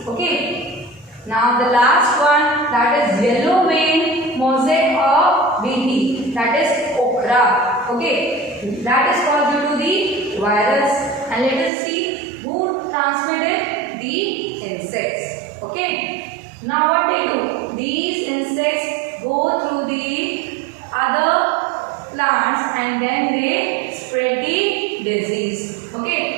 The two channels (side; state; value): left; drops out; at 11.7 s